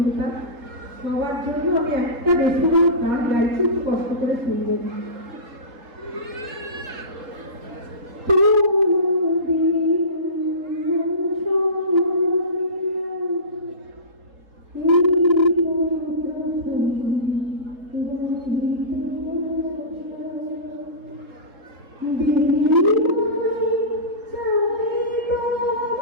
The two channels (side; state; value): left; late; 3.8 ms